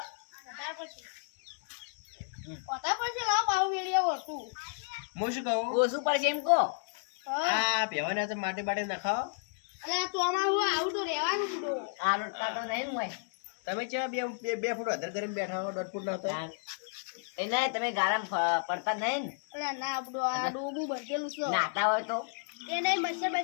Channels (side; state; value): right; silent; digital silence